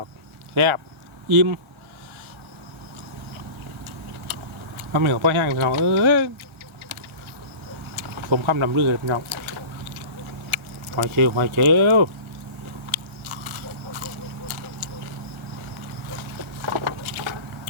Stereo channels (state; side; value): late; left; 1.4 ms